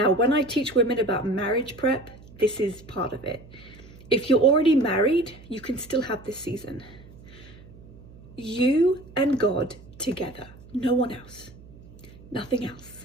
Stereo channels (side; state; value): right; noise; hum, 21 dB below the sound